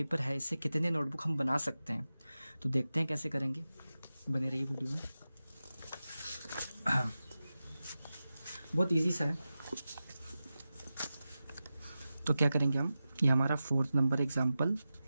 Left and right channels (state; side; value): inverted; both; correlation -0.94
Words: है इससे कितने नोटबुक हम बना सकते हैं। तो देखते हैं कैसे करेंगे, बने रहिए वीडियो में। बहुत इजी सा है। तो क्या करेंगे हम, ये हमारा 4th नंबर एग्जाम्पल।